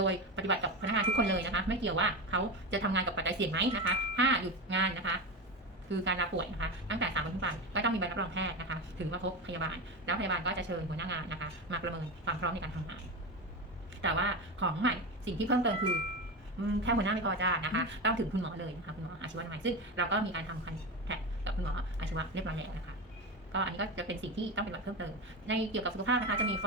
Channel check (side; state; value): both; normal; correlation 0.20